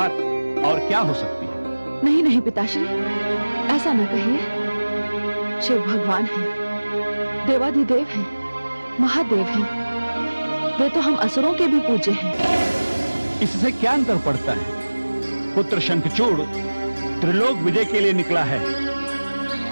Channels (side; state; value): both; inverted; correlation -1.00